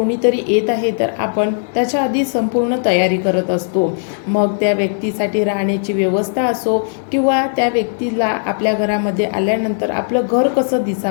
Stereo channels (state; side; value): silent; right; digital silence